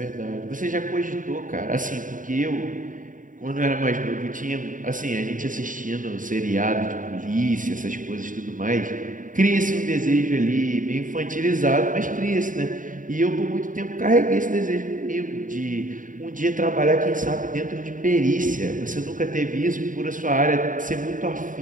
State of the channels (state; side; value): late; left; 0.38 ms